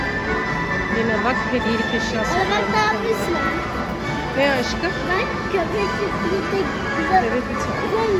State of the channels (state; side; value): identical; both; correlation 1.00